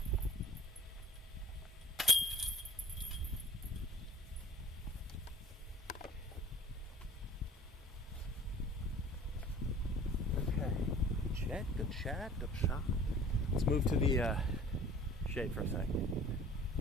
Okay. Good chat. Let's move to the shade for a second.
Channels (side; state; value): both; normal; correlation 0.48